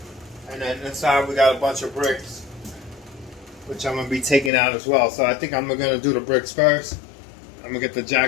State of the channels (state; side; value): drops out; right; at 4.5 s